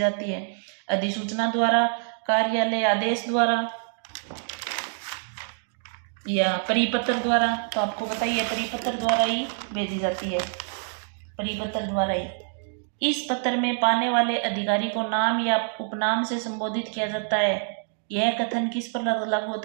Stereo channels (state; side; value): silent; left; 60 dB below the other